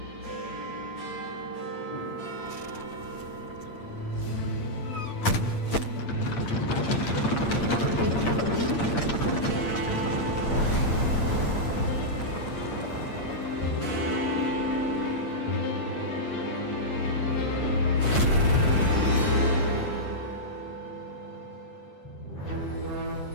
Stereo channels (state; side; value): late; right; 8.6 ms